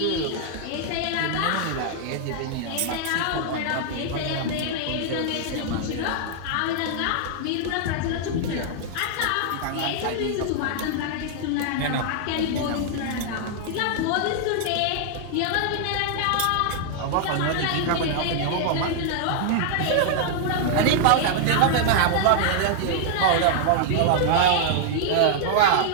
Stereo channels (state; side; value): different; both; correlation -0.01